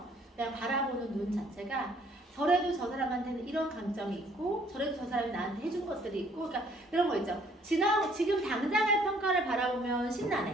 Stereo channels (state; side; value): normal; both; correlation 0.61